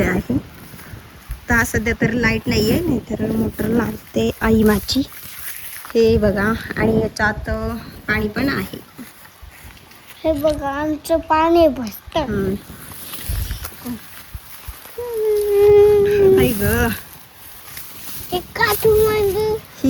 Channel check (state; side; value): identical; both; correlation 1.00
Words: आहे. तर सध्या तर लाईट नाही आहे, नाहीतर मोटर लावते आई माझी. हे बघा, आणि याच्यात पाणी पण आहे. हे बघा आमचं पाणी भरतं.